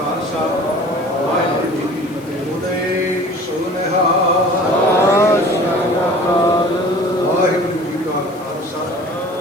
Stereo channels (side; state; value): left; noise; hiss, 25 dB below the sound